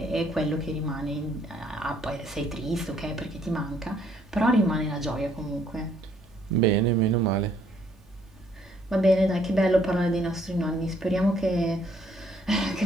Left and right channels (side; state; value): both; normal; correlation 0.66